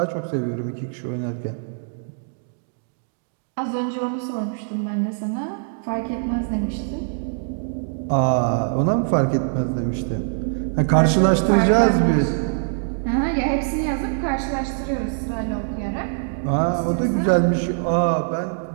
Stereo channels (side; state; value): left; silent; digital silence